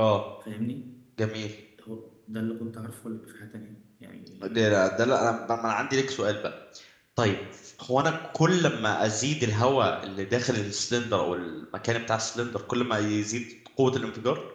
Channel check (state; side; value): identical; both; correlation 1.00